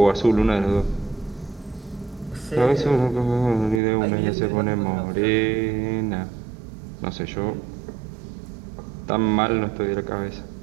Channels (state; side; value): drops out; left; at 3.8 s